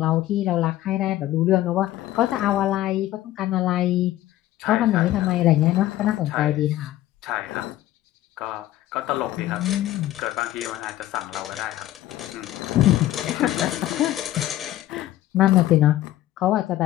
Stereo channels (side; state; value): right; quieter; 14.4 dB